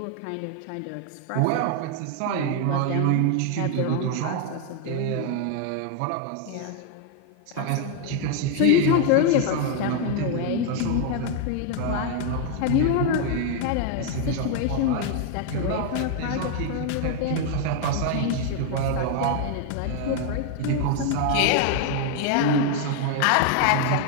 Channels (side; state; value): both; different; correlation 0.00